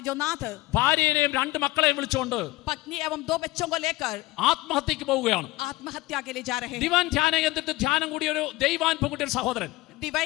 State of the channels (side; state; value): right; quieter; 19.6 dB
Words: जो नाथ, ഭാര്യയെയും 2 മക്കളെയും വിളിച്ചുകൊണ്ട് पत्नी एवं 2 बच्चों को लेकर ആത്മഹത്യക്ക് പോവുകയാണ്. आत्महत्या के लिए जा रहे हैं. ദിവാൻ ധ്യാന കേന്ദ്രത്തിൽ ധ്യാനം കൂടിയ ഒരു ദൈവാനുഭവത്തിന്റെ സഹോദരൻ